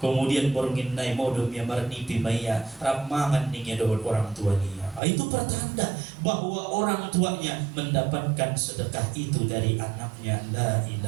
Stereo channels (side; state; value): left; drops out; at 5.0 s